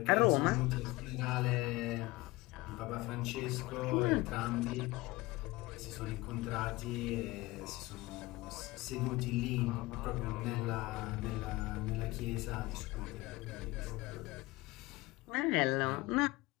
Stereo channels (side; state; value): right; quieter; 20.9 dB